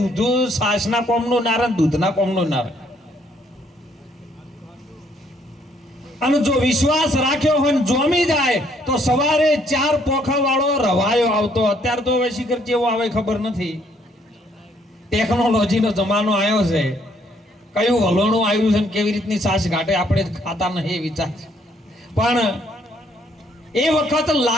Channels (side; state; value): both; normal; correlation 0.67